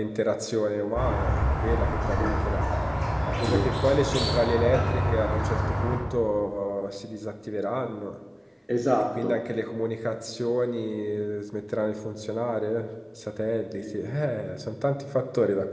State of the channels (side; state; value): both; identical; correlation 1.00